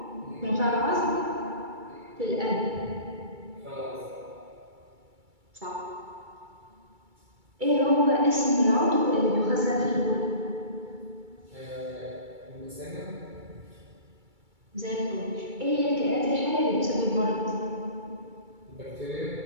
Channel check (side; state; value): left; late; 2.3 ms